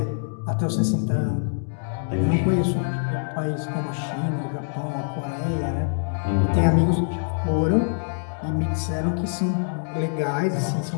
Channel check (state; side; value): silent; right; digital silence